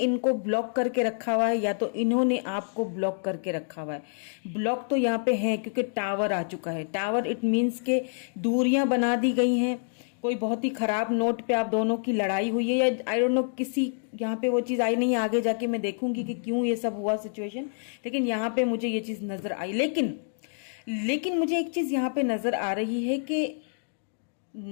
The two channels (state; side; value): silent; right; digital silence